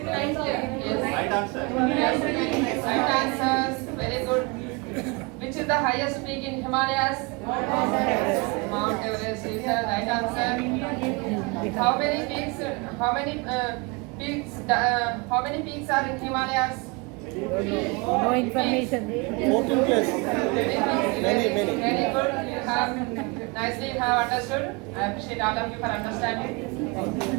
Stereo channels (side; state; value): left; quieter; 28.9 dB